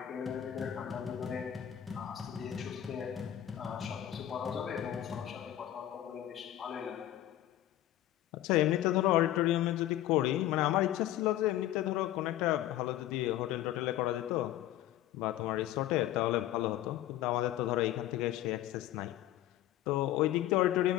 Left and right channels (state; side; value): quieter; right; 13.1 dB